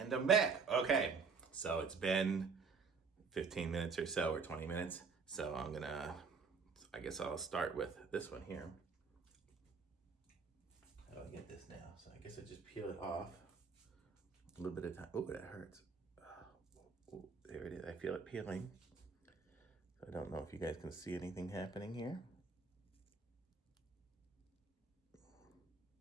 I'm back. Okay, so it's been 15 minutes or so, or 20 minutes. So I guess I'll start with this one here. How do I get this now? So I guess I just peel it off. A little bit of time. Oh, that hurts. Oh, there it is. I feel it peeling. I don't know if you guys can see anything happening here.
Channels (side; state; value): left; quieter; 5.0 dB